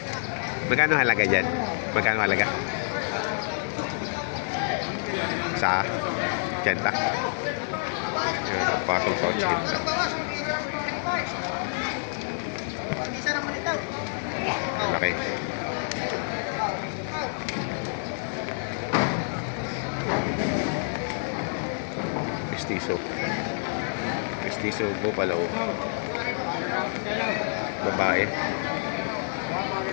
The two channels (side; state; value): right; silent; digital silence